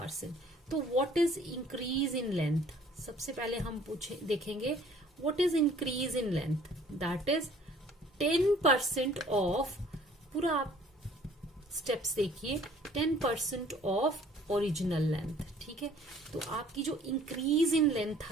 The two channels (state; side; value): normal; both; correlation 0.55